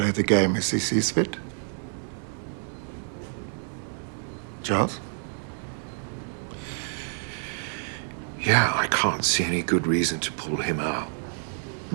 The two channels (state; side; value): silent; left; 59 dB below the other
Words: the game as he sees fit. Charles? Yeah, I can't see any good reason to pull him out.